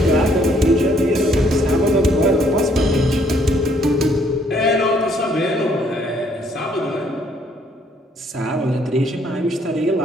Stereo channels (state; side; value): normal; both; correlation 0.66